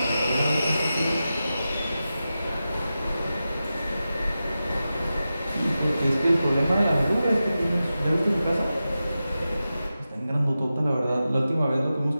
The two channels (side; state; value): both; inverted; correlation -0.93